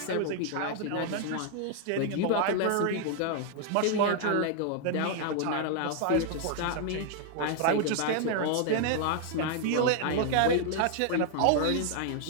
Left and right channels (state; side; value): different; both; correlation 0.00